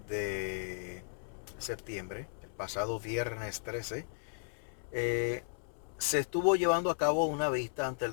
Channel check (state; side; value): silent; right; 54 dB below the other